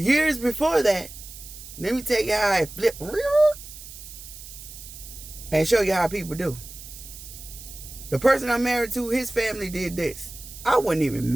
before that, let me tell you how it flipped and show you how people do. The person I'm married to, his family did this. I wasn't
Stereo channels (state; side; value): noise; right; hiss, 15 dB below the sound